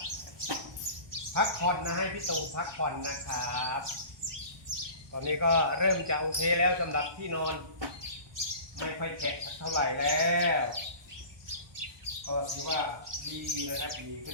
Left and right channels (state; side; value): late; left; 1.2 ms